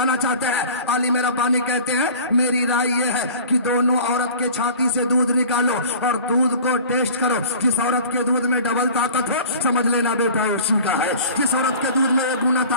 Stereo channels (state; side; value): inverted; both; correlation -0.42